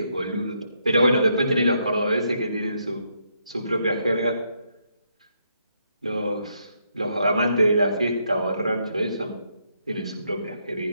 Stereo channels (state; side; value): inverted; both; correlation -0.76